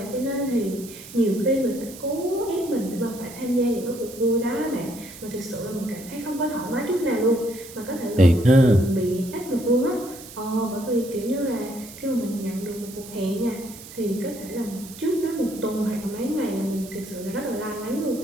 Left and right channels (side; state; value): right; noise; hiss, 16 dB below the sound